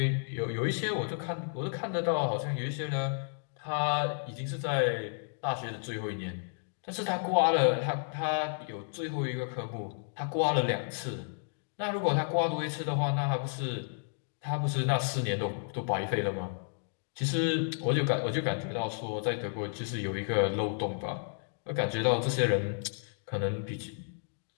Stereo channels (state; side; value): silent; right; digital silence